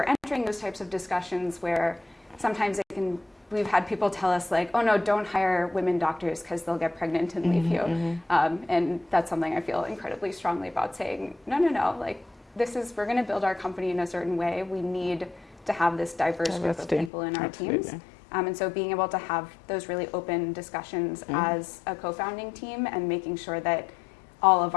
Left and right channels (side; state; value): right; drops out; at 17.1 s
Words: entering those types of discussions where sometimes we've had people tell us like, oh no, don't hire women doctors because they'll get pregnant and leave you. And that's something I feel incredibly strongly about, saying, no, like we're going to build our company in a certain way. We need to have this diverse group of people in our teams. And so being able to have those really open discussions as a co-founding team and making sure that all of